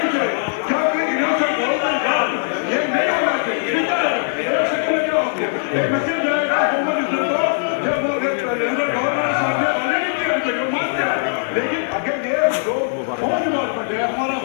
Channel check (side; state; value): right; silent; digital silence